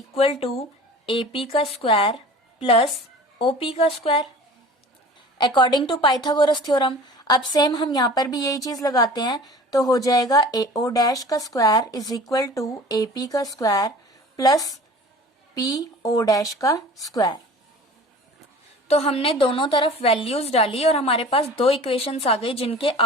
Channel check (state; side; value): normal; both; correlation 0.42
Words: to AP का स्क्वायर प्लस OP का square according to Pythagoras theorem. अब सेम हम यहाँ पर भी यही चीज लगाते हैं, तो हो जाएगा AO डैश का square is equal to AP का स्क्वायर प्लस PO डैश का स्क्वायर। तो हमने दोनों तरफ वैल्यूज डाली और हमारे पास दो इक्वेशंस आ गई जिनके